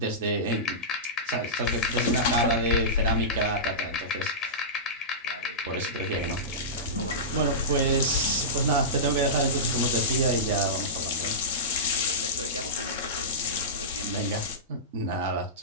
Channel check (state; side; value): normal; both; correlation -0.18